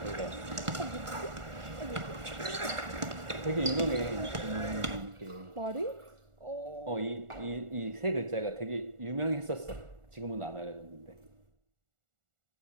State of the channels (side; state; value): left; late; 1.4 ms